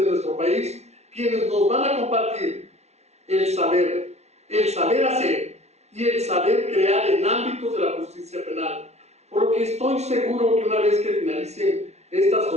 de nuestro país, quienes nos van a compartir el saber hacer y el saber crear en ámbitos de la justicia penal. Por lo que estoy seguro que una vez que finalicen estas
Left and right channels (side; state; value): left; late; 0.31 ms